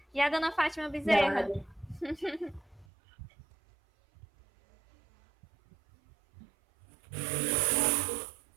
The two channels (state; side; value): drops out; left; at 2.9 s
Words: E a dona Fátima Bezerra?